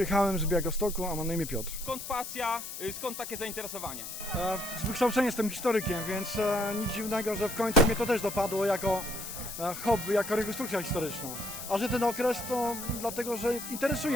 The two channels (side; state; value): left; noise; hiss, 8 dB below the sound